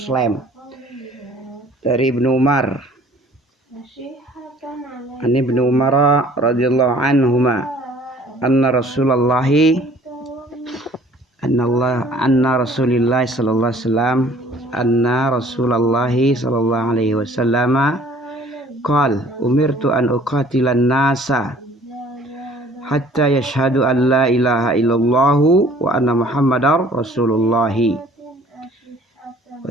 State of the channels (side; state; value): both; normal; correlation 0.54